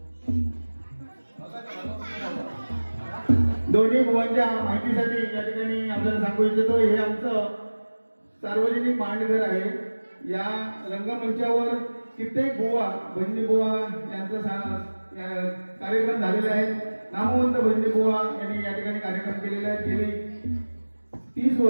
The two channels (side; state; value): both; inverted; correlation -1.00